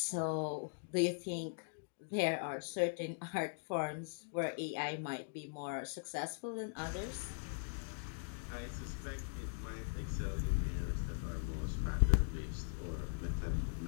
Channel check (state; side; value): silent; right; digital silence